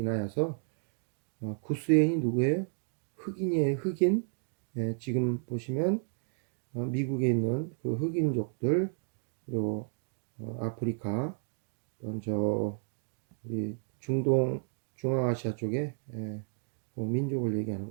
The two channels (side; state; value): left; silent; 56 dB below the other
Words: 구스 여인이 누구예요? 흑인이에요. 흑인. 지금 보시면 미국에 있는 그 흑인족들, 그리고 아프리카, 또는 우리 중동 중앙아시아 쪽에 그 민족을 얘기하는